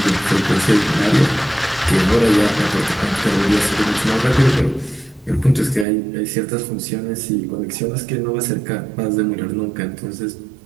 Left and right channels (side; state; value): left; drops out; at 5.9 s